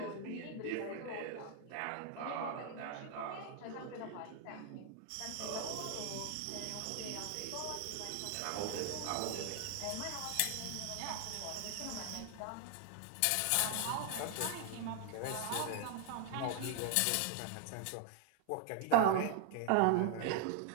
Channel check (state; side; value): different; both; correlation 0.00